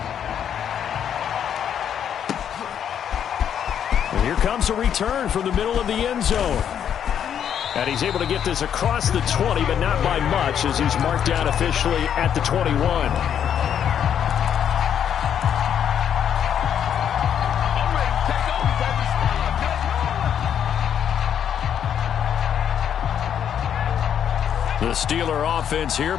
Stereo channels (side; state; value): right; quieter; 8.9 dB